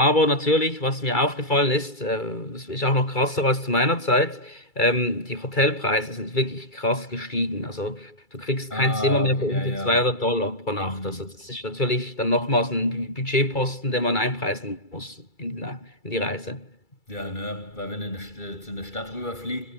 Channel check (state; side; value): late; right; 2.3 ms